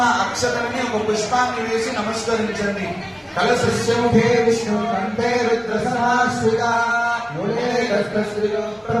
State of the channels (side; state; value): both; identical; correlation 1.00